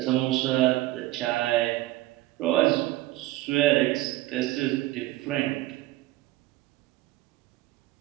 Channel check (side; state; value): left; quieter; 17.2 dB